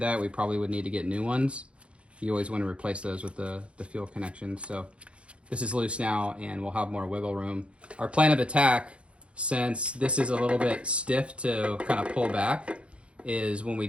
that, we probably would need to get new ones. You always want to replace those with the fuel connections. So this is loose now, and we'll have more wiggle room. Our plan of attack, since this is a little bit stiff to kind of pull back, is when we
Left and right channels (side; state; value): left; late; 0.059 ms